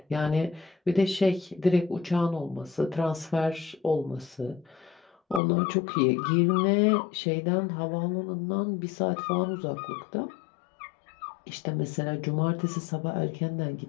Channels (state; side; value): drops out; right; at 5.4 s